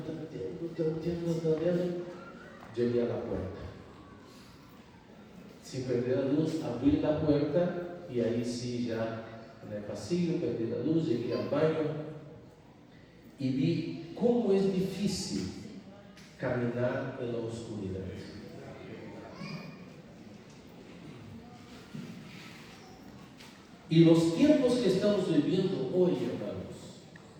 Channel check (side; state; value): both; identical; correlation 1.00